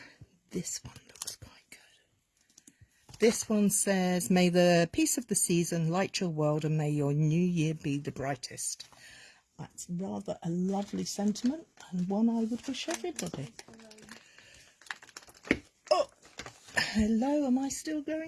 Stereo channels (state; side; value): identical; both; correlation 1.00